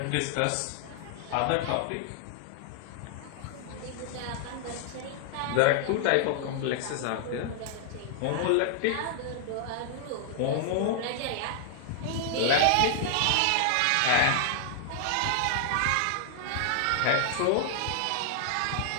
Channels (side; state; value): both; different; correlation 0.00